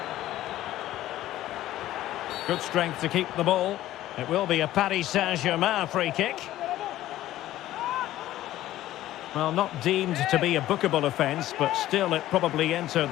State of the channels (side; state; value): right; quieter; 14.3 dB